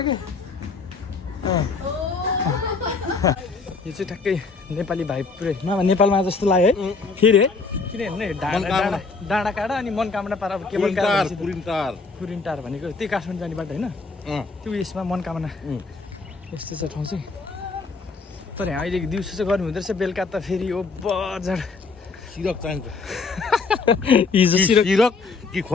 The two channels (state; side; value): quieter; right; 4.4 dB